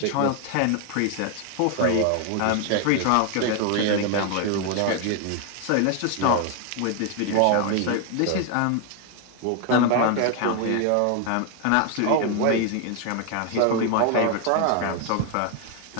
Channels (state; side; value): different; both; correlation 0.00